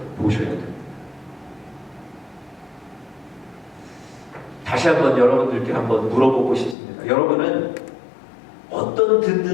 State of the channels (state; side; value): drops out; right; at 6.8 s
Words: 됩니다. 다시 한번 여러분들께 한번 물어보고 싶습니다. 여러분은 어떤